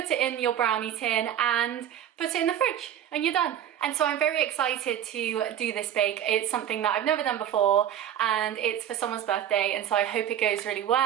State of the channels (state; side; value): quieter; left; 10.4 dB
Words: it in your brownie tin and put it in the fridge and you're done. And so I'm very excited to do this bake. It's something that I've never done before and it's for someone's birthday, and so I hope it goes really